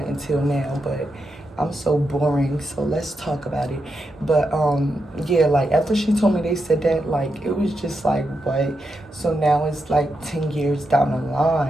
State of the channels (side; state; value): both; normal; correlation 0.85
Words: until now, but I'm so boring, so let's talk about it. But, yeah, like, after she told me they said that, like, it was just like, what? So now it's, like, 10 years down the